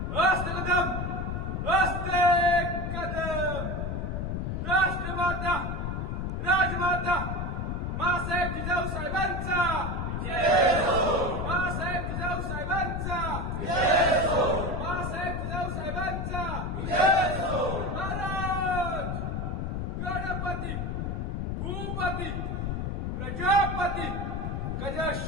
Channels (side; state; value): left; noise; rumble, 2 dB below the sound